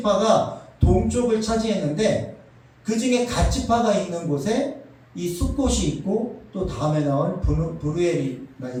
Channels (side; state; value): both; identical; correlation 1.00